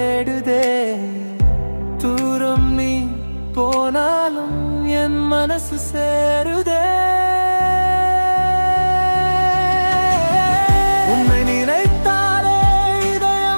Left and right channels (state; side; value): inverted; both; correlation -1.00